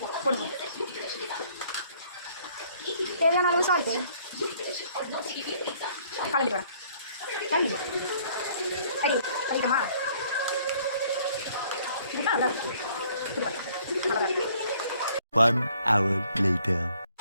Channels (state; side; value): inverted; both; correlation -0.61